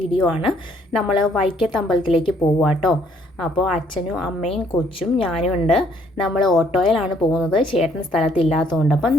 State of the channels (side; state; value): both; normal; correlation 0.65